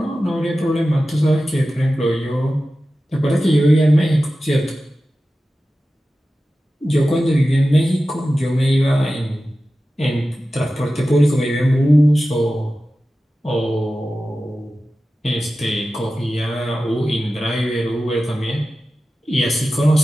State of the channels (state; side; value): normal; both; correlation 0.94